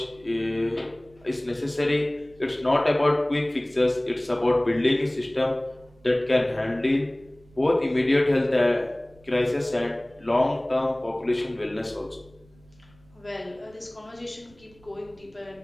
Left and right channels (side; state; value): right; noise; rumble, 29 dB below the sound